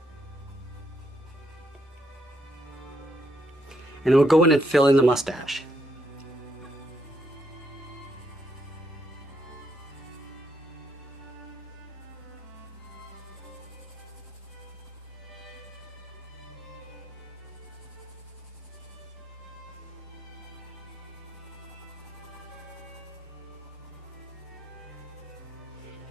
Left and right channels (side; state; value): both; normal; correlation 0.77